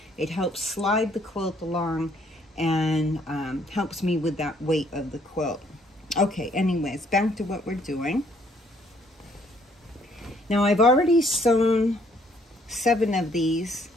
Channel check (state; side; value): normal; both; correlation 0.65